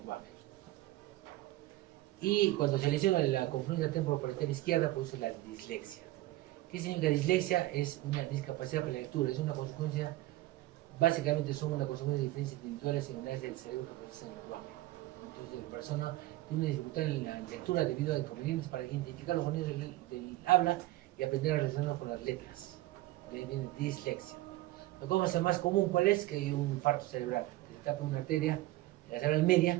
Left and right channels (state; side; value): quieter; left; 17.1 dB